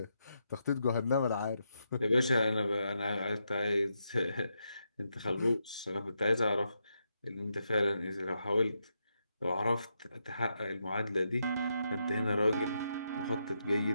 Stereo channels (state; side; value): inverted; both; correlation -0.83